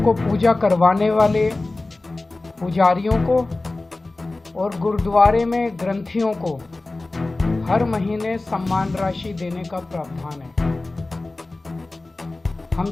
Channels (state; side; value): quieter; right; 3.1 dB